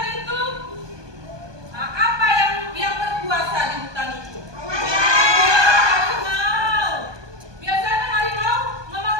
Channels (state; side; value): late; left; 1.2 ms